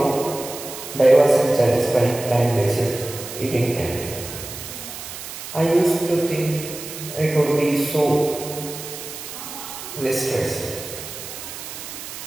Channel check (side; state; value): right; noise; hiss, 10 dB below the sound